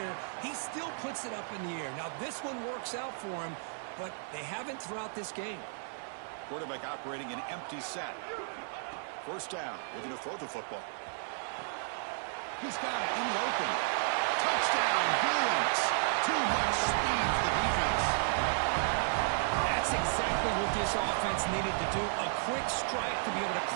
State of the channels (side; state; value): left; silent; 55 dB below the other